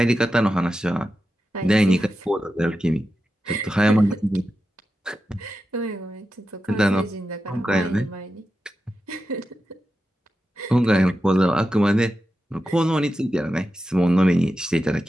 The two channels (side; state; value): both; normal; correlation 0.91